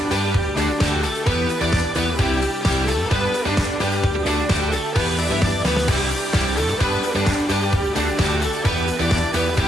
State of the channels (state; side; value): normal; both; correlation 0.80